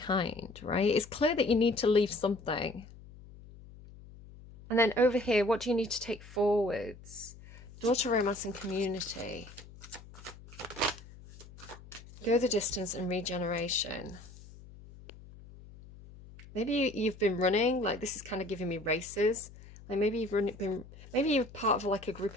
right? It's clear that you need to leave something. And then over here, what do you need to take forwards? Daughter, romance, and community. Go the distance and regeneration. Maybe you've been running, like this is kind of giving me races. Like maybe maybe you're part of like a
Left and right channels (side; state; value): left; noise; hum, 19 dB below the sound